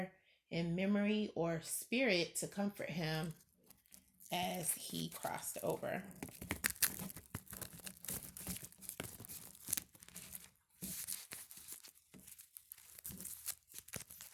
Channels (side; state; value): both; identical; correlation 1.00